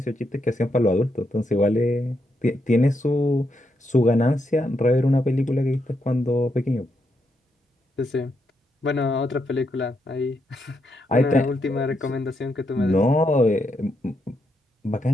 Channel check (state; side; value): normal; both; correlation 0.80